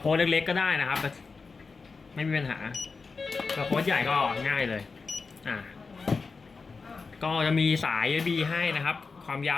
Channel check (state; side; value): quieter; right; 4.5 dB